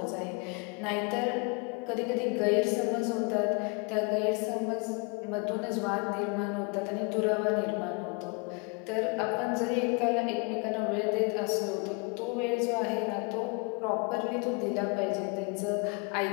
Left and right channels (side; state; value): right; quieter; 33.0 dB